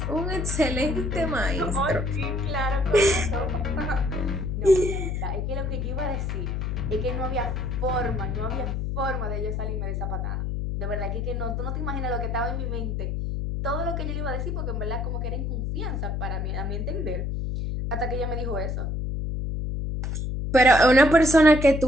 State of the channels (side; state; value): left; noise; hum, 2 dB below the sound